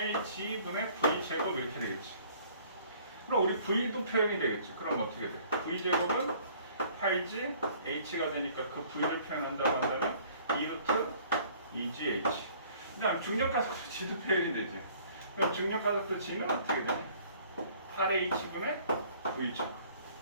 V 제곱 이렇게 되겠지. 그럼 우리 V도 표현이 되겠지. 그럼 어떻게 돼? V 제곱은 8G H가 되니까 그 V를 표현한다고 한다면 2루트 2GH. 그다음 중력가속도 G도 표현이 되지. 그럼 중력가속도 G는 어떻게 되냐? 8H분의 V 제곱.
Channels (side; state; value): both; inverted; correlation -0.55